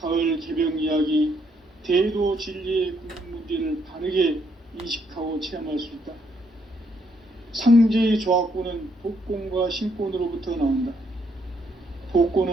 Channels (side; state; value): both; normal; correlation 0.73